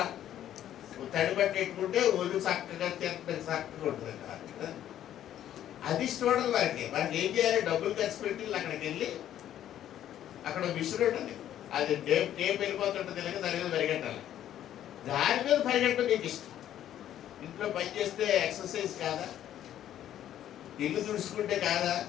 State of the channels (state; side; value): quieter; right; 11.4 dB